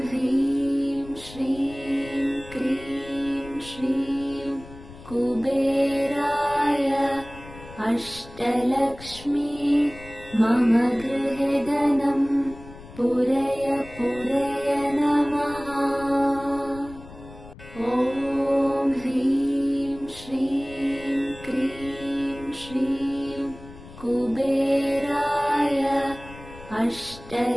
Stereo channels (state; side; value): noise; left; rumble, 17 dB below the sound